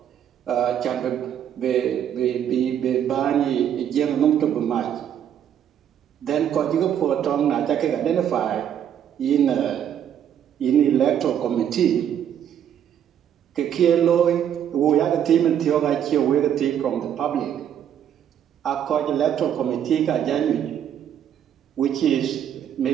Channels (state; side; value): quieter; left; 9.5 dB